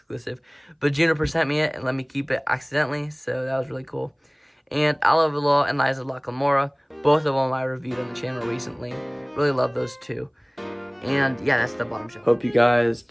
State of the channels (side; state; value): both; identical; correlation 1.00